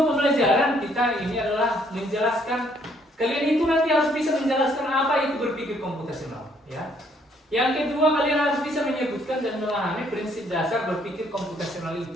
pembelajaran kita ini adalah menjelaskan kalian itu nanti harus bisa menjelaskan apa itu berpikir komputasional, ya. Yang kedua, kalian harus bisa menyebutkan dan memahami prinsip dasar berpikir komputasional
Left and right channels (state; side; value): normal; both; correlation 0.66